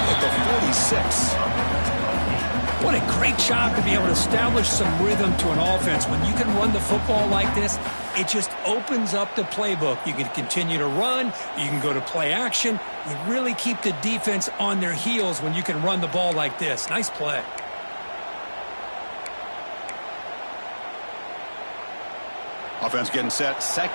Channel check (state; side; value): inverted; both; correlation -1.00